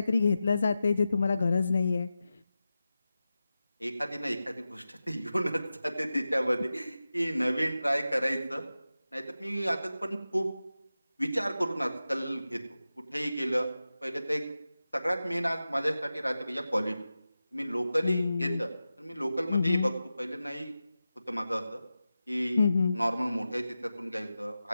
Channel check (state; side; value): inverted; both; correlation -0.93